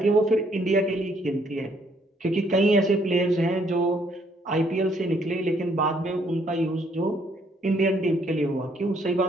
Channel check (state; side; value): normal; both; correlation 0.67